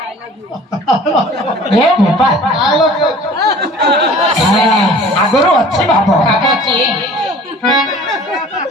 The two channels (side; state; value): both; normal; correlation 0.47